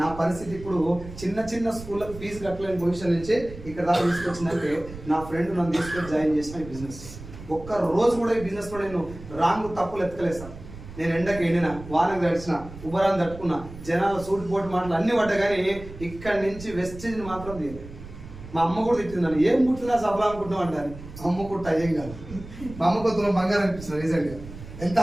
నా పరిస్థితి ఇప్పుడు చిన్న స్కూళ్ళకి ఫీజు కట్టలేని పొజిషన్ నుంచి ఇక్కడ దాకా తీసుకొచ్చిందంటే నా ఫ్రెండ్ నన్ను తీసుకొని జాయిన్ చేసిన ఈ బిజినెస్. ఒక్క రోజు కూడా ఈ బిజినెస్లో నేను రాంగ్ తప్పులు ఎత్తుకలేసాను. నేను ఎండకి ఎండిన, వానకు తడిచిన, ఉబరాన్ని తట్టుకున్నా, జనాల సూట్ పోటు మాటలు అన్ని పడ్డా కానీ ఇక్కడి నుంచి వెస్టేజ్ని మాత్రం తీయలేదు. మా అమ్మ కూడా తిట్టిందని ఏం కుట్టినా సఫలం అనుకుంటున్నాం అంటారు. అమ్మ కుట్ట ఏం కాదు. మా అమ్మ కొత్తలో బంగారం అనిపిస్తుంది రీసెంట్గా. ఎంత?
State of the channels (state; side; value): noise; right; rumble, 14 dB below the sound